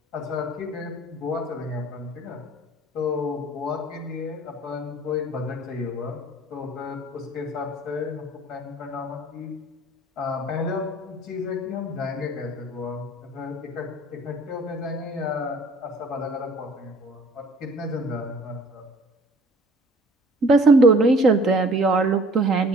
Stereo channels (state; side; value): normal; both; correlation 0.52